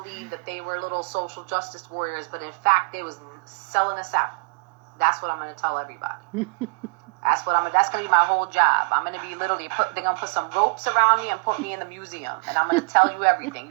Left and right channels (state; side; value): quieter; left; 35.6 dB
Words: that they were little social justice warriors, but in fact they was selling us out. That's what I'm going to tell everybody. That's going to be my whole job. I'm going to be literally, they're going to put some ropes around me and put me in the museum. And I'm going to tell you everything.